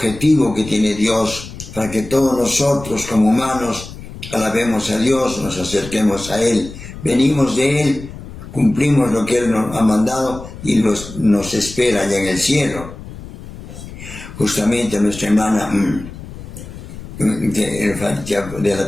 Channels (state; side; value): noise; left; rumble, 13 dB below the sound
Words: que tiene Dios para que todos nosotros como humanos alabemos a Dios, nos acerquemos a Él, venimos de Él, cumplimos lo que Él nos ha mandado y nos espera allá en el cielo. Justamente nuestra hermana de la